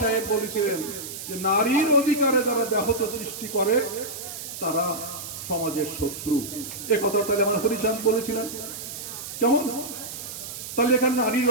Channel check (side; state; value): right; noise; hiss, 9 dB below the sound